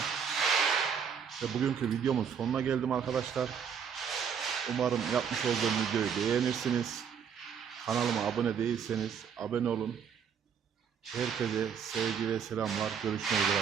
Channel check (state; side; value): quieter; left; 7.3 dB